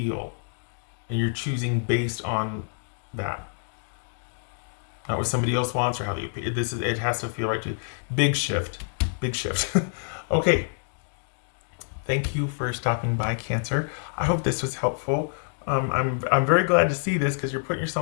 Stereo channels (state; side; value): silent; right; digital silence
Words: and you're choosing based on that, not what somebody else wants or how you. It has to feel right too. Big shift, big shift. Okay, thank you for stopping by, Cancer. I hope this was helpful. I'm very glad to see this because you're putting